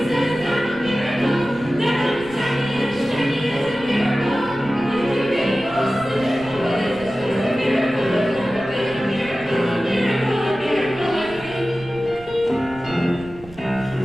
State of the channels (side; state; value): right; noise; rumble, 20 dB below the sound